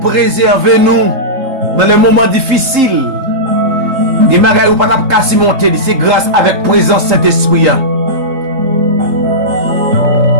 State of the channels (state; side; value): late; left; 3.8 ms